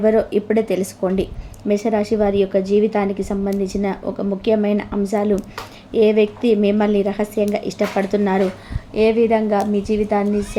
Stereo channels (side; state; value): both; identical; correlation 1.00